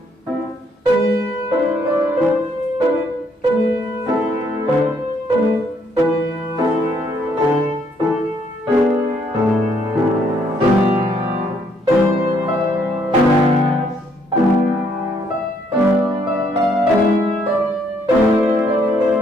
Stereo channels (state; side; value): normal; both; correlation 0.70